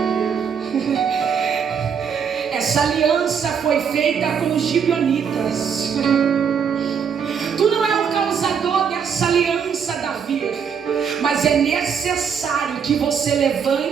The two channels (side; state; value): left; quieter; 7.0 dB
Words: Essa aliança foi feita com os gibeonitas. Tu não é o causador dessa aliança, Davi, mas é necessário que você